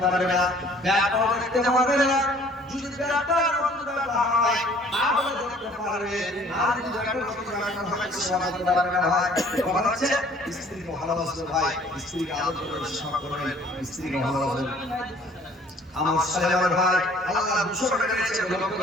পারবে না, ব্যাপার দেখতে পারবে না। যদি ব্যাপার হয় তাহলে দেখতে পারবে, আর যদি ব্যাপার হয় সেবা করতে পারবে না ভাই। কথা হচ্ছে স্ত্রীকে ভালোবাসবে ভাই, স্ত্রীকে আদর করে সেবা করবেন, স্ত্রীকে ভালোবাসবেন। আমার সালাম ভাই আল্লাহ 200 টাকা দিয়েছে, লক্ষ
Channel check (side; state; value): both; normal; correlation 0.55